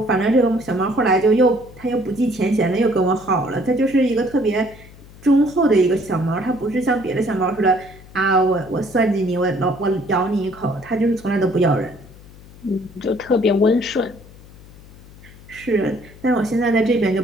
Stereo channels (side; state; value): left; noise; hum, 21 dB below the sound